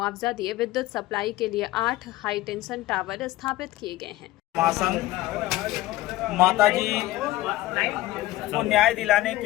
दिए विद्युत सप्लाई के लिए 8 हाईटेंशन टावर स्थापित किए गए हैं। महासंघ माताजी को न्याय दिलाने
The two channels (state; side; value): quieter; right; 16.8 dB